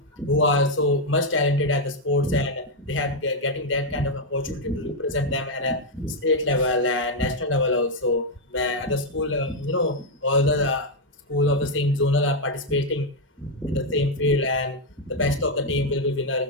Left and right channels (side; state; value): both; normal; correlation 0.01